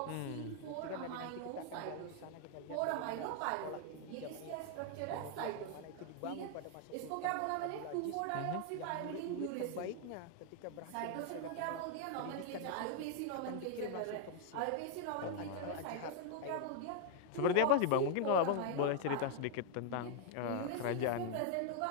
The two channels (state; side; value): different; both; correlation 0.00